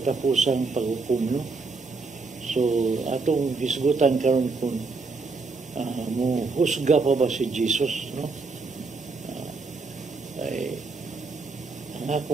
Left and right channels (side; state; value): left; quieter; 4.1 dB